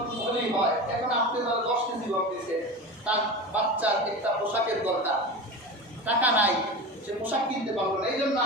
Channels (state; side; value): normal; both; correlation 0.28